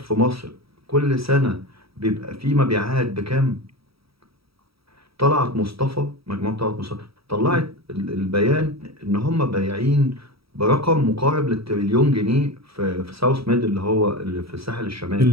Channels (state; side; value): late; left; 0.76 ms